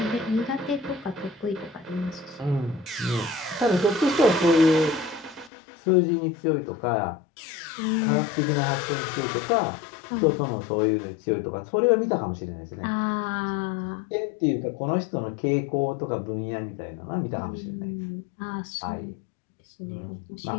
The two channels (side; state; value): right; drops out; at 5.5 s